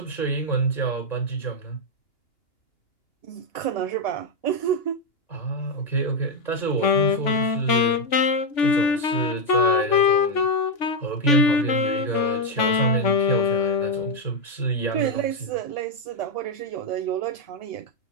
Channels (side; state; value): right; late; 3.5 ms